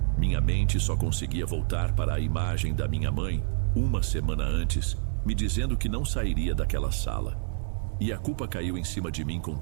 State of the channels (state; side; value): silent; left; 60 dB below the other